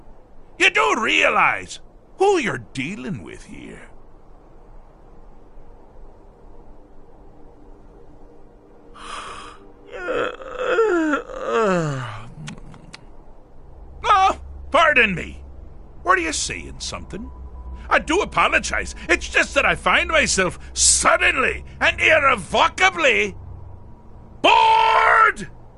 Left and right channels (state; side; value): identical; both; correlation 1.00